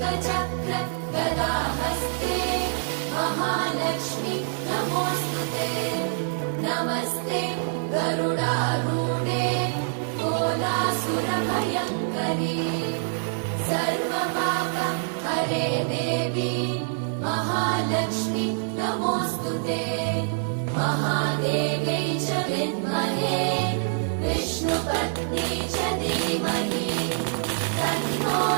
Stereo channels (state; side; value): silent; left; digital silence